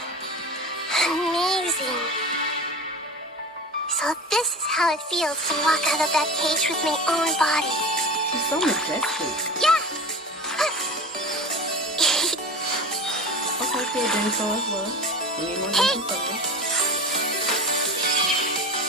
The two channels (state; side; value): normal; both; correlation 0.32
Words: Amazing. So this is how it feels to walk out of that cage with my own body. It's so majestic. Yeah! Okay, kid, then so as well. We need more Genshin focus.